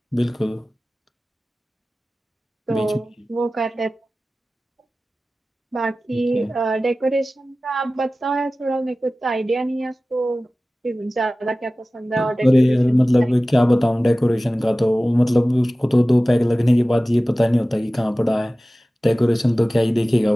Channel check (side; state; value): both; normal; correlation 0.96